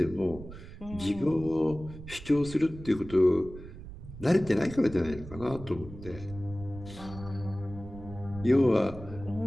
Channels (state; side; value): noise; right; rumble, 14 dB below the sound